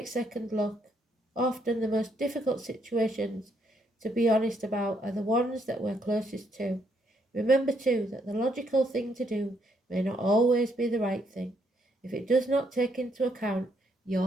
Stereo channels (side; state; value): both; normal; correlation 0.73